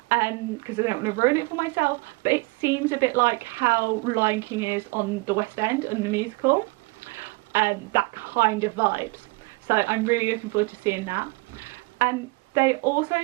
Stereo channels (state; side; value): quieter; left; 27.5 dB